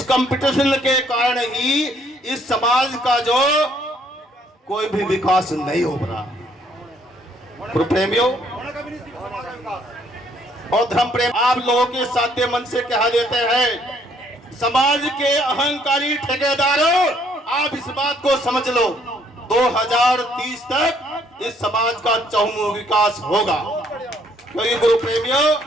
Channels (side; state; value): both; normal; correlation 0.66